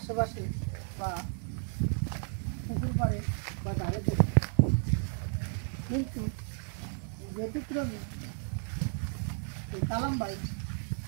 বা পুকুর পাড়ে বা ধারে দেখি, কিন্তু ব্যতিক্রমী এই কালাম ভাই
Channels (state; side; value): silent; left; 56 dB below the other